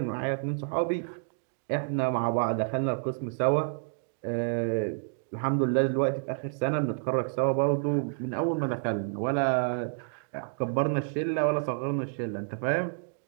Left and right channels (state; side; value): silent; left; digital silence